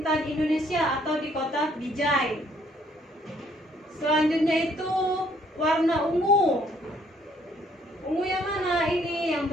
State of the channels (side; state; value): both; normal; correlation 0.65